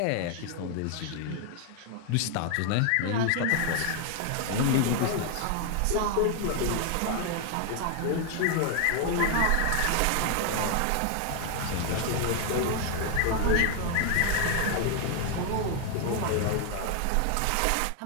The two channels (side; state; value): both; different; correlation 0.00